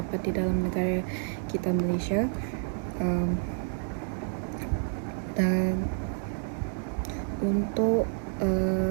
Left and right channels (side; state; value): left; silent; 58 dB below the other